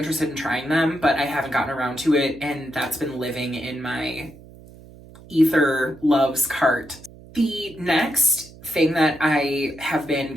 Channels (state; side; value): noise; right; hum, 20 dB below the sound